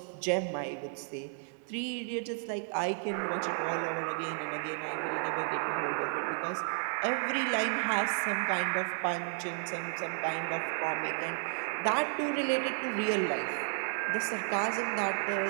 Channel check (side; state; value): left; silent; 56 dB below the other